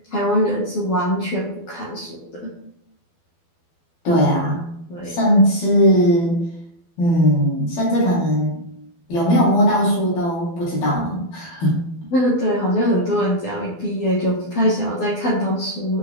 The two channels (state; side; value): late; right; 12 ms